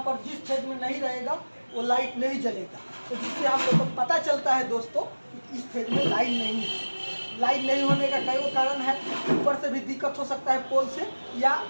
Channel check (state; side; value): inverted; both; correlation -1.00